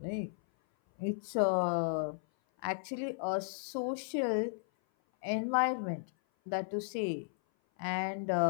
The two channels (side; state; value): right; silent; 55 dB below the other